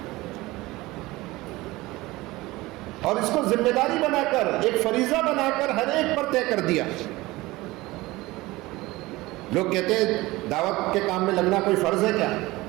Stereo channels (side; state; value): left; quieter; 20.0 dB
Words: اور اس کو ذمہ داری بنا کر, ایک فریضہ بنا کر ہر ایک پر طے کر دیا. لوگ کہتے ہیں دعوت کے کام میں لگنا کوئی فرض ہے کیا؟